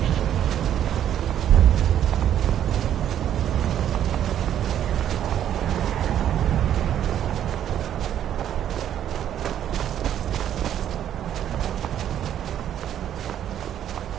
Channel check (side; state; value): left; quieter; 10.4 dB